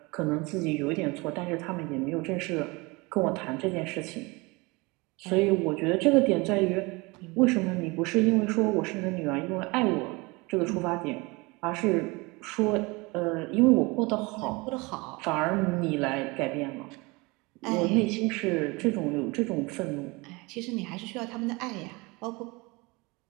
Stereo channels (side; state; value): left; quieter; 25.5 dB